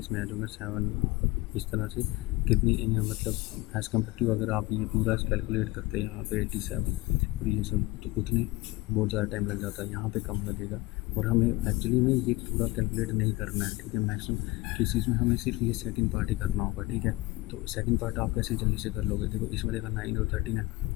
आ जाएगा 7। इस तरह से कितनी मतलब एज़ कम्पेयर टू अगर आप ये पूरा कैलकुलेट करते हैं यहाँ पे 87 और ये सब, तो उतने बहुत ज़्यादा टाइम लग जाता है, यहाँ पे कम लगेगा। और हमें एक्चुअली में ये पूरा कैलकुलेट नहीं करना है, ठीक है। मैक्सिमम केसेस में हमें सिर्फ ये सेकंड पार्ट ही करना होगा, ठीक है। तो सेकंड पार्ट आप कैसे जल्दी से कर लोगे, देखो इसमें देखा 9 और 13 है,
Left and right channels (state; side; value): quieter; right; 20.8 dB